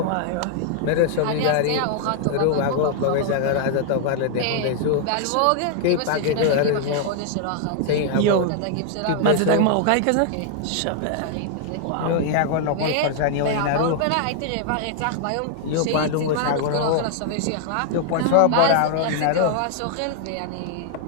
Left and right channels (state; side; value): different; both; correlation 0.00